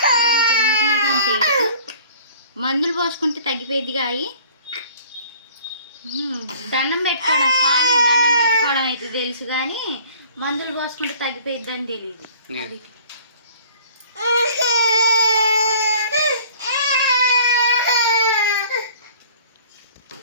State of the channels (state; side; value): inverted; both; correlation -0.50